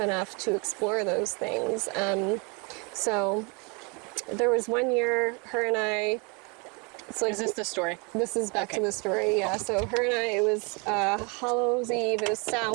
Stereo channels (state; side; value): quieter; left; 32.0 dB